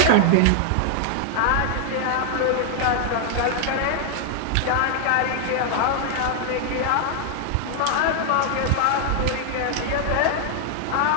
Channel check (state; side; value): different; both; correlation 0.00